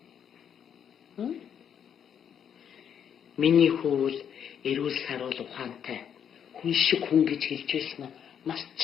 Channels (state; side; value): quieter; right; 8.4 dB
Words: Миний хүү эрүүл саруул ухаантай хүн шиг хүн гэж хэлж байсан нь